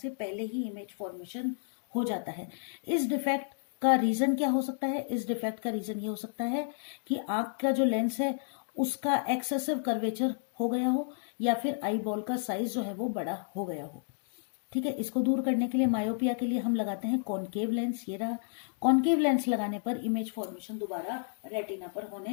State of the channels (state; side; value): silent; right; digital silence